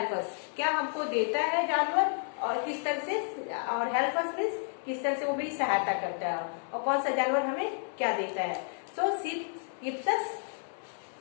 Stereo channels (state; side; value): silent; right; 57 dB below the other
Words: us. क्या हमको देता है जानवर और किस तरह से, और help us means किस तरह से वो भी सहायता करता है, और कौन सा जानवर हमें क्या देता है. So sheep gives us